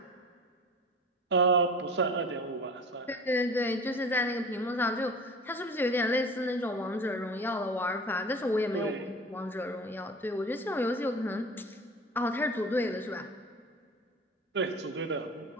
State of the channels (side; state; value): both; normal; correlation 0.38